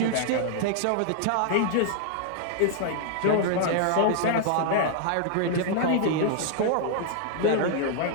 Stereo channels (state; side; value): different; both; correlation -0.01